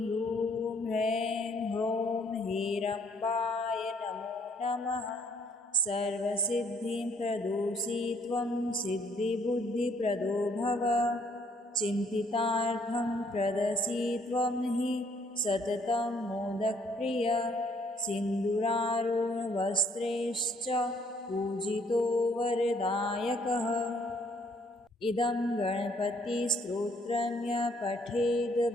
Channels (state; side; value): normal; both; correlation 0.65